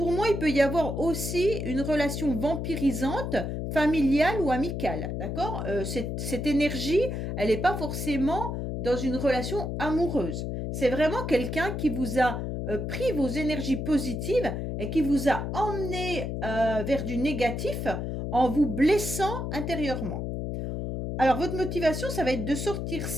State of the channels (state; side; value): noise; left; hum, 3 dB below the sound